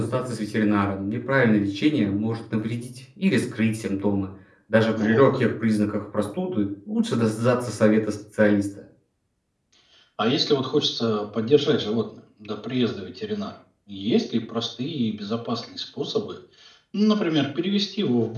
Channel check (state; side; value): identical; both; correlation 1.00